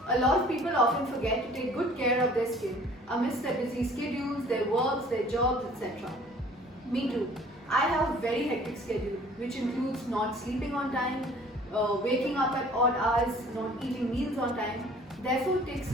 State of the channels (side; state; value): both; normal; correlation 0.52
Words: A lot of people often forget to take good care of their skin amidst their busy schedules, their works, their jobs, etc. Me too. I have a very hectic schedule which includes not sleeping on time, waking up at odd hours, not eating meals on time. Therefore, it takes